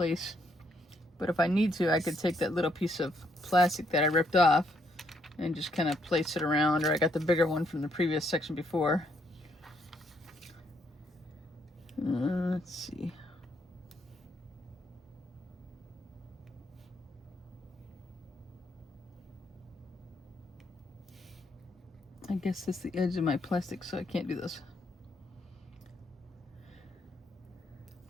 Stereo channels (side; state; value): both; normal; correlation 0.72